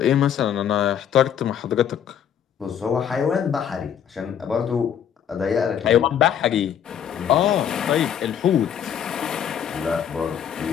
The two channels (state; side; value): quieter; right; 8.9 dB